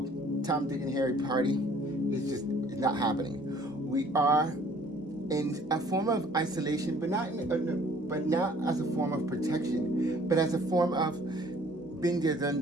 Tom, Dick, and Harry party. It's not happening. We are in a form of isolation, but not as a form of protection, but as a form of being there, done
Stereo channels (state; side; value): normal; both; correlation 0.56